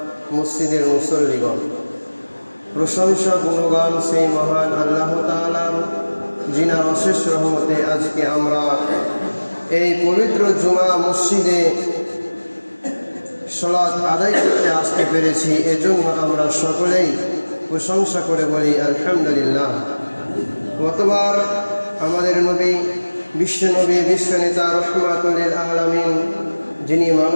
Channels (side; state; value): both; inverted; correlation -1.00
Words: মসজিদের মুসল্লিগণ, প্রশংসা গুণগান সেই মহান আল্লাহ তাআলার, যিনার অশেষ রহমতে আজকে আমরা এই পবিত্র জুমা মসজিদে সালাত আদায় করতে আসতে পেরেছি। এজন্য আমরা সকলেই প্রশংসা করে বলি আলহামদুলিল্লাহ। গতবার আমাদের নবী, বিশ্বনবী, বিশ্বনেতা, রহমাতুল লিল আলামিন, যিনি